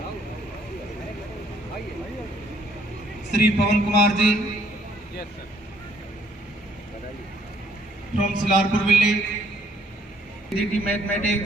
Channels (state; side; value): normal; both; correlation 0.64